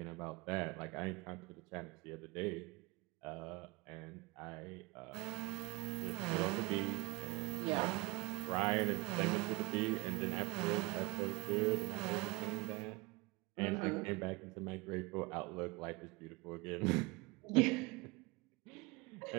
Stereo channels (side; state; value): left; quieter; 25.6 dB